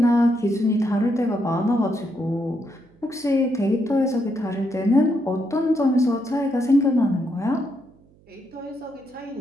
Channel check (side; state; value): right; noise; hum, 30 dB below the sound